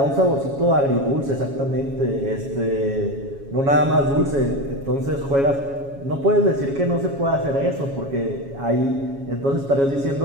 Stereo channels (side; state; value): left; late; 7.2 ms